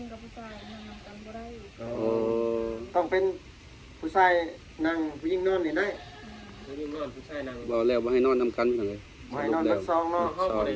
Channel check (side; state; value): both; identical; correlation 1.00